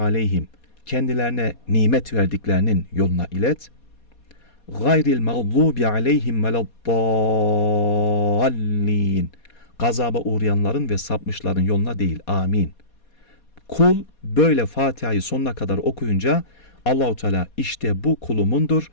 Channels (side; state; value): right; late; 4.2 ms